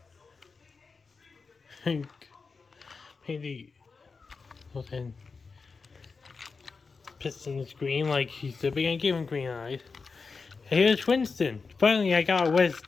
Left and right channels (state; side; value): quieter; right; 4.6 dB